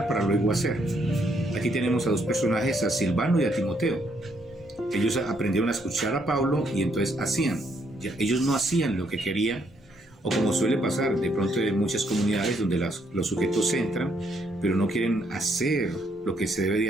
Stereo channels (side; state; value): both; normal; correlation 0.72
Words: para luego hacer. Aquí tenemos a dos personajes, a Silvano y a Timoteo. Ellos aprendieron a escuchar a Pablo y entonces hacían. Ellos no hacían lo que querían, o como suele pasar de pronto en muchas comunidades donde los sujetos entran, pero no quieren hacer lo que se debe de